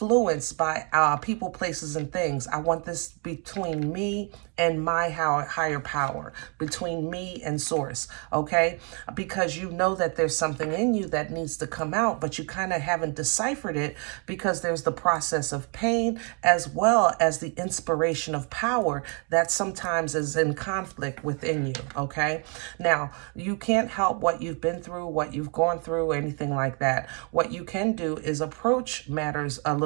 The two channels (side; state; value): left; quieter; 36.3 dB